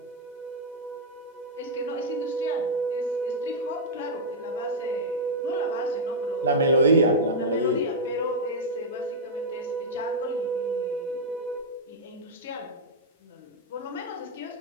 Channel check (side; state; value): both; normal; correlation -0.06